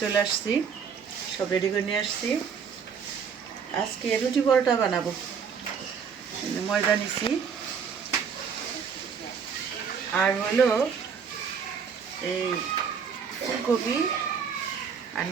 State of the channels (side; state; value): left; quieter; 6.6 dB